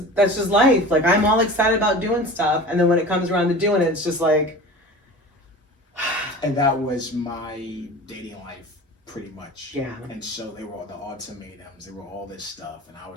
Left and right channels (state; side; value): normal; both; correlation 0.36